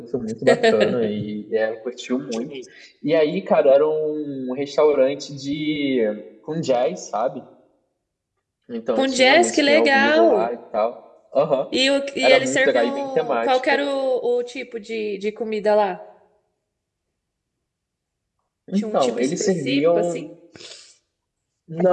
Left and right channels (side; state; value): both; identical; correlation 1.00